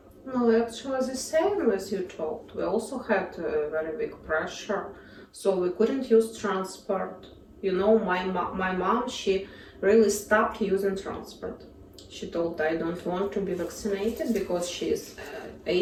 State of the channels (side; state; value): both; identical; correlation 1.00